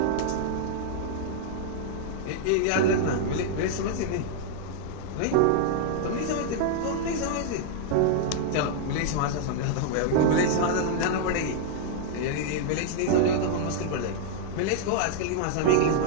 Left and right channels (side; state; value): both; different; correlation -0.01